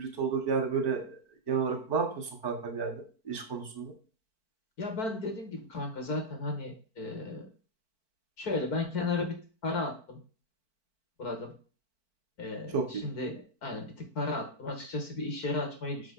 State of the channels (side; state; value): right; late; 4.5 ms